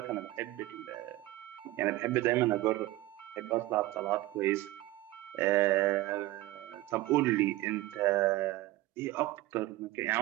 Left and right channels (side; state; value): left; quieter; 17.5 dB